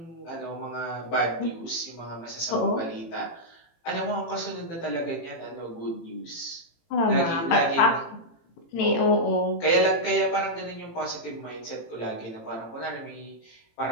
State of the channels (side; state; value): right; late; 18 ms